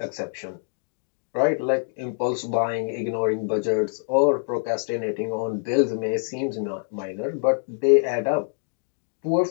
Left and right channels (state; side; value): silent; right; digital silence